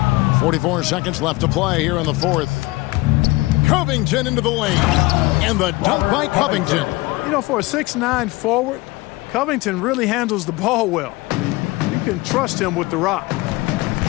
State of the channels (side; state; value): right; quieter; 21.7 dB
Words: 44 seconds left to play here in the fourth. Covington into the lane. And the dunk by Covington. You know, for a 6'9" forward, Covington really handles the ball well. I mean, you can trust him with the rock.